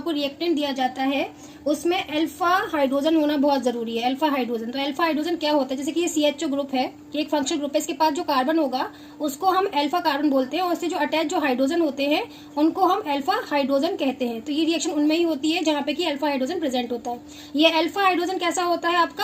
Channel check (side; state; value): both; identical; correlation 1.00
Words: रिएक्टेंट दिया जाता है उसमें अल्फा हाइड्रोजन होना बहुत जरूरी है। अल्फा हाइड्रोजन, तो अल्फा हाइड्रोजन क्या होता है, जैसे कि ये CHO ग्रुप है, ये एक फंक्शनल ग्रुप है, इसके पास जो कार्बन होगा उसको हम अल्फा कार्बन बोलते हैं और इससे जो अटैच जो हाइड्रोजन होते हैं उनको हम अल्फा हाइड्रोजन कहते हैं। तो ये रिएक्शन उनमें ही होती है जहाँ पे कि अल्फा हाइड्रोजन प्रेजेंट होता है। ये अल्फा हाइड्रोजन कैसा होता है,